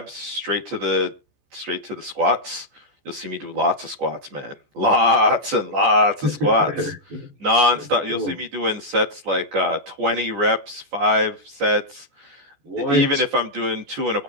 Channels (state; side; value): late; left; 14 ms